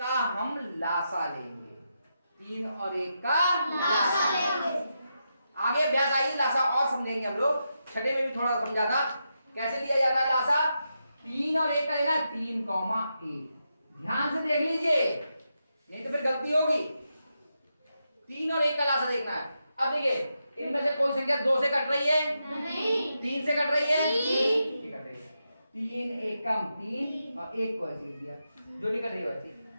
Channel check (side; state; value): both; inverted; correlation -0.85